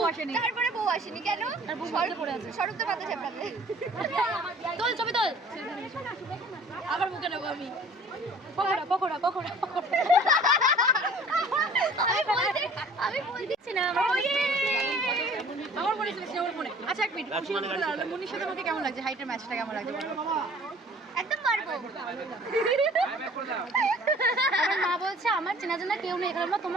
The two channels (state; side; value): normal; both; correlation 0.50